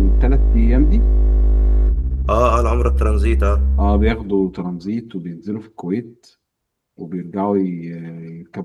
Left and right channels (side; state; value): both; identical; correlation 1.00